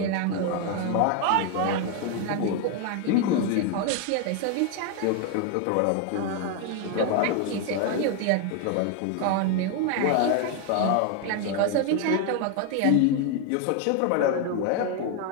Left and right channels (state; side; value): different; both; correlation 0.01